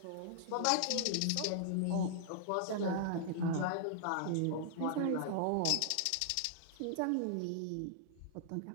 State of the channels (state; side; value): different; both; correlation -0.01